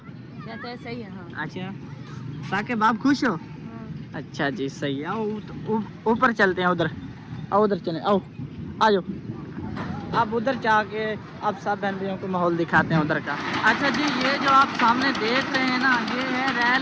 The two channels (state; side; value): identical; both; correlation 1.00